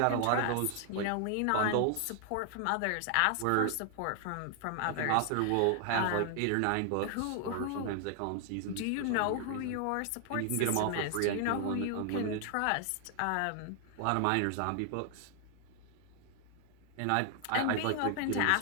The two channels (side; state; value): both; different; correlation 0.00